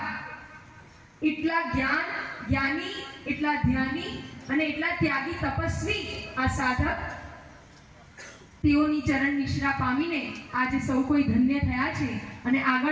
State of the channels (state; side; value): identical; both; correlation 1.00